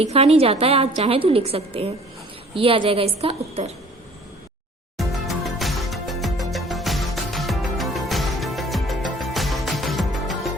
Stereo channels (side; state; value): both; normal; correlation 0.52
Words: नहीं जाता है, आप चाहें तो लिख सकते हैं। ये आ जाएगा इसका उत्तर।